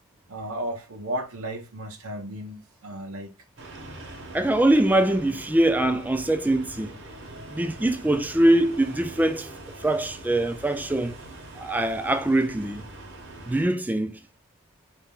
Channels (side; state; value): both; normal; correlation 0.84